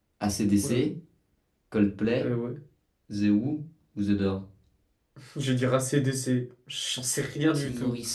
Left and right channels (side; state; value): both; identical; correlation 1.00